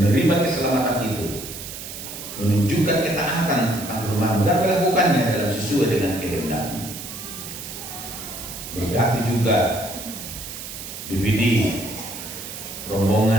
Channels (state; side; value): noise; right; hiss, 10 dB below the sound